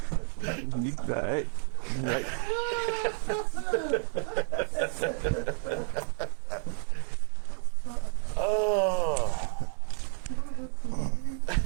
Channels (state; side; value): silent; left; 58 dB below the other